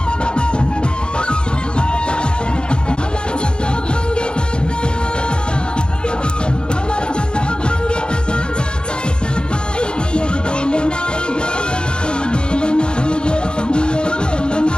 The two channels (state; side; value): late; right; 0.050 ms